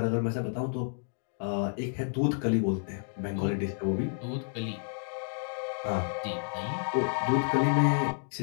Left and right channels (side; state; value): right; silent; digital silence